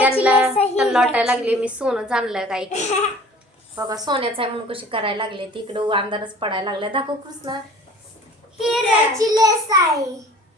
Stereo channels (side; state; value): both; normal; correlation 0.47